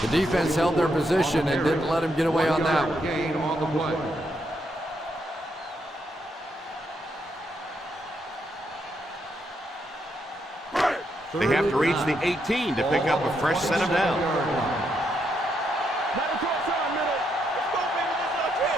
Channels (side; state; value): both; normal; correlation 0.78